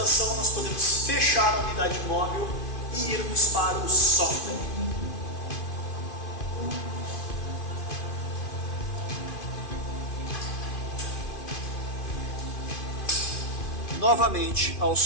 nós podemos fechar a unidade móvel e irmos para o software. Novamente ao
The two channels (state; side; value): late; right; 2.5 ms